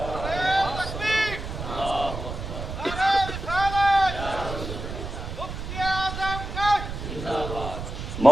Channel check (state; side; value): noise; right; rumble, 7 dB below the sound